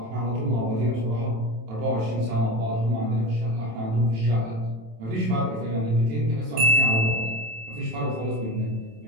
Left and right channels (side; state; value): left; late; 27 ms